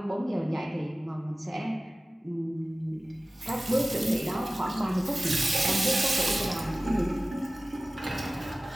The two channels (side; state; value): both; normal; correlation 0.97